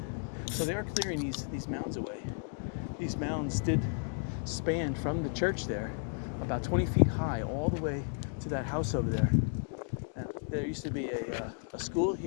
So they are clearing these mounds away. These mounds did span from the church there about 20 feet high all the way to that house over there. And there used to be a school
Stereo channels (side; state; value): right; silent; 55 dB below the other